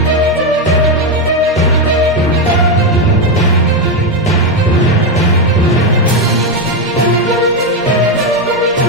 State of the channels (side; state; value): both; normal; correlation 0.07